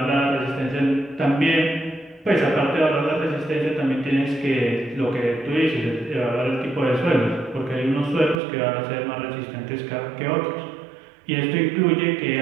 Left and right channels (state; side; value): drops out; left; at 8.4 s